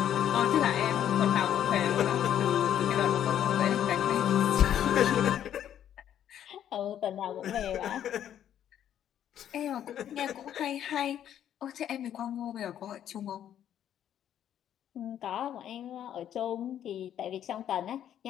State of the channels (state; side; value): quieter; right; 10.4 dB